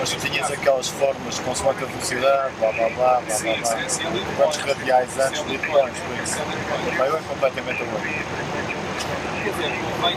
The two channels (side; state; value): both; identical; correlation 1.00